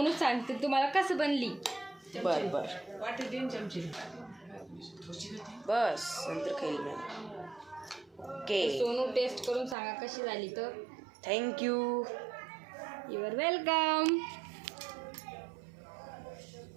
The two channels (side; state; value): left; drops out; at 9.8 s